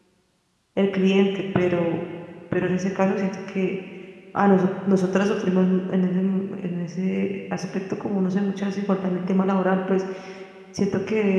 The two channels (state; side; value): identical; both; correlation 1.00